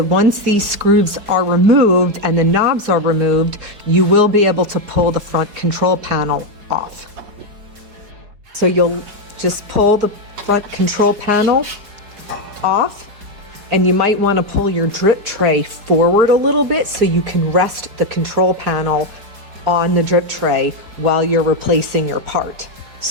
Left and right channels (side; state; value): left; late; 4.7 ms